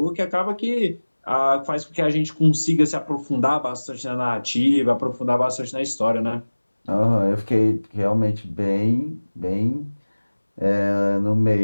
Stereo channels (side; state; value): both; inverted; correlation -1.00